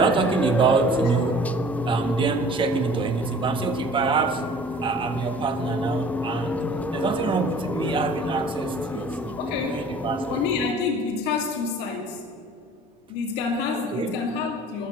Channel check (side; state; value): both; normal; correlation 0.48